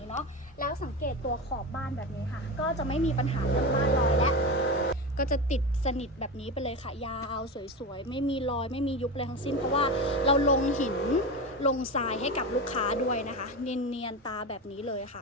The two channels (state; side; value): normal; both; correlation 0.22